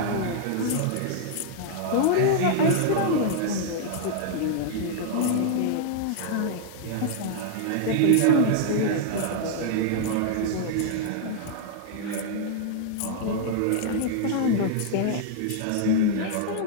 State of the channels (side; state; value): both; different; correlation -0.01